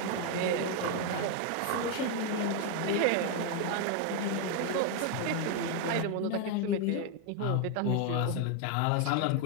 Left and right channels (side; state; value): both; different; correlation 0.01